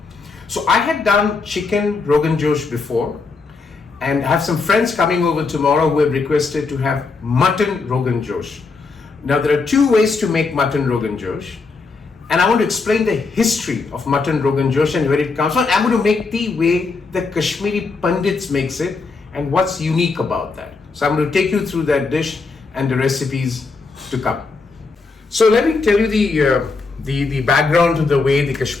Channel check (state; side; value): quieter; right; 4.2 dB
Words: So I had done chicken Rogan Josh before, and I have some friends coming over tomorrow who have requested to have mutton Rogan Josh. Now there are two ways to make mutton Rogan Josh, and I want to explain the history of mutton Rogan Josh and where it comes from. I'm going to make the way the Kashmiri Pandits makes it and what's unique about that. So I'm going to take you through that dish and the recipes to come. So let me tell you the background to the way the